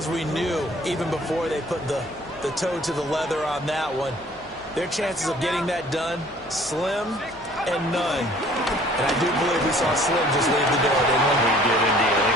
we knew, even before they put the toe to the leather on that one, their chances of getting that done, slim and none. And I do believe we saw Slim just leave the door, didn't we? We did indeed. I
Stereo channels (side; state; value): left; noise; hum, 26 dB below the sound